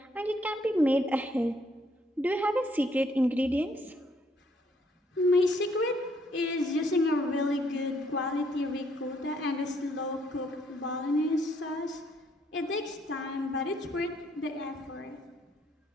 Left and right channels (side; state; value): both; normal; correlation 0.69